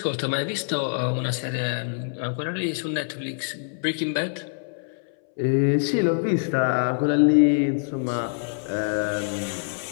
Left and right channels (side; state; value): right; silent; 60 dB below the other